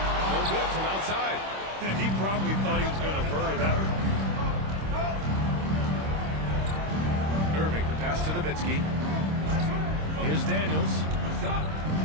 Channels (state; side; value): late; left; 26 ms